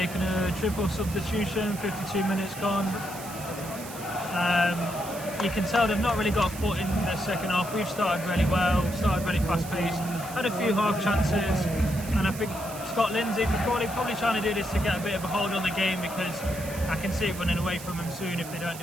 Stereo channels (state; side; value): noise; right; hiss, 13 dB below the sound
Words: a triple substitution, 52 minutes gone. You can tell they've not really got a foot in the second half. We've started really well, started really fast paced, had a few half chances, and I think Scott Lindsay for Crawley probably trying to do this to get a bit of a hold on the game, because I can see it running away from them soon if they don't